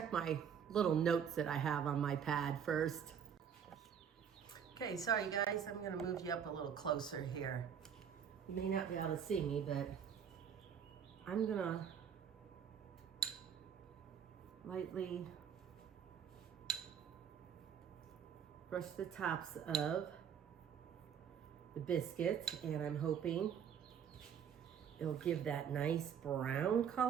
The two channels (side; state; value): left; quieter; 8.0 dB